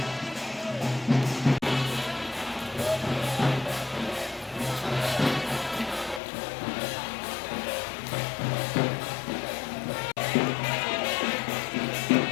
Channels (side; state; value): right; drops out; at 6.2 s